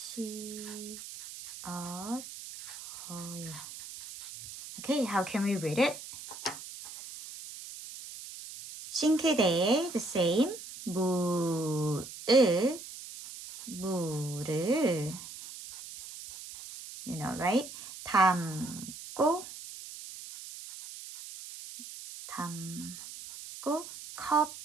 Okay, how can we read it? 싱크대에 the same 물을 you know, right? 담고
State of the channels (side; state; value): right; noise; hiss, 12 dB below the sound